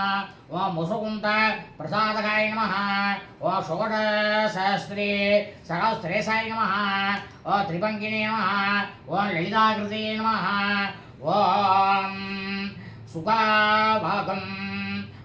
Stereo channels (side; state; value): both; identical; correlation 1.00